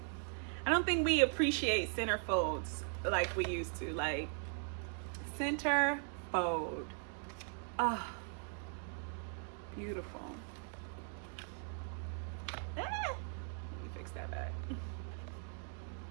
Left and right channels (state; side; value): silent; left; 51 dB below the other